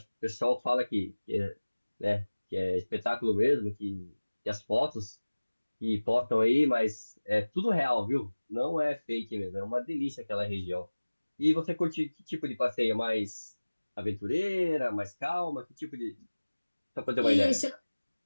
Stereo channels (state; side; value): inverted; both; correlation -1.00